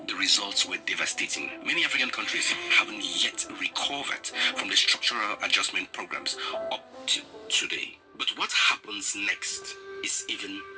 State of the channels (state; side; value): identical; both; correlation 1.00